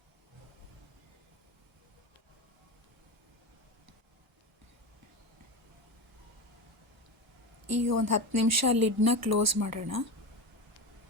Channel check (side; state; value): both; normal; correlation 0.22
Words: ಈಗ ಒಂದು 10 ನಿಮಿಷ ಲಿಡ್ನ ಕ್ಲೋಸ್ ಮಾಡೋಣ.